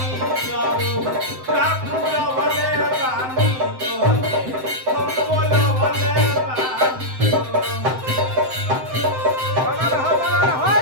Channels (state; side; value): late; left; 7.8 ms